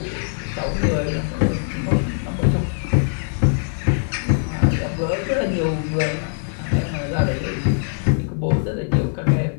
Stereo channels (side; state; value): right; silent; digital silence